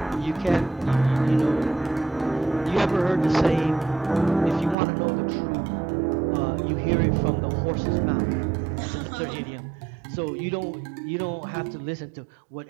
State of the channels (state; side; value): drops out; left; at 4.8 s